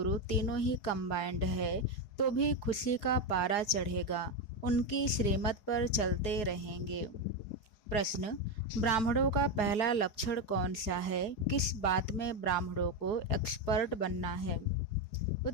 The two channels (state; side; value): late; right; 4.8 ms